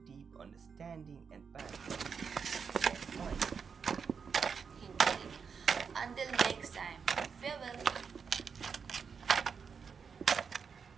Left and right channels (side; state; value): left; quieter; 6.1 dB